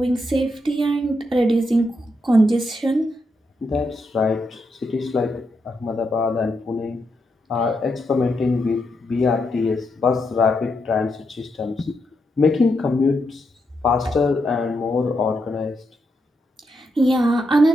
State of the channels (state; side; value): normal; both; correlation 0.82